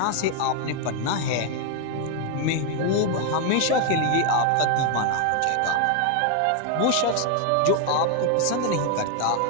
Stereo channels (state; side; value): different; both; correlation 0.01